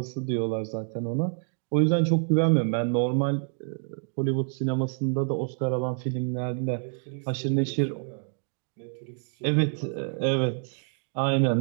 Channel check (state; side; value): silent; left; 60 dB below the other